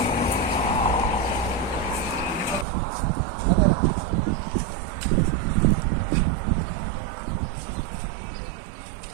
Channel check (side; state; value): left; drops out; at 2.7 s